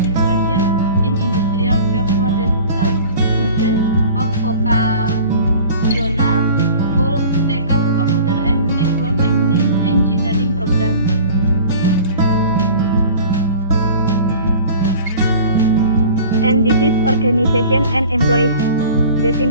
in industrial job for the students of vocational school taken computer and network engineering program. And this is organization and employees. The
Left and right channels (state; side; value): inverted; both; correlation -0.43